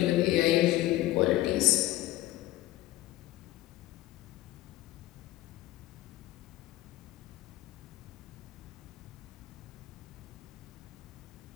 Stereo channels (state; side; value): quieter; right; 16.0 dB